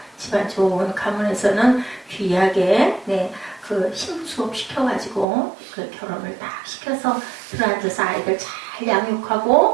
집안 좋은 가문에서는 귀하게, 네, 그 신부 수업 시켜가지고 그 결혼을 딱 시켜서 들어앉아서 아이들 잘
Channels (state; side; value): drops out; left; at 5.2 s